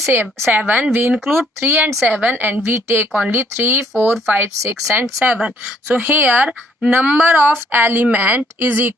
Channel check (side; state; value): both; normal; correlation 0.65